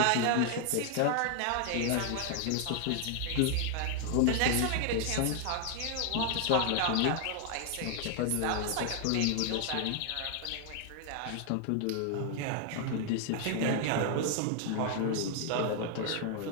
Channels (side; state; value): both; different; correlation 0.00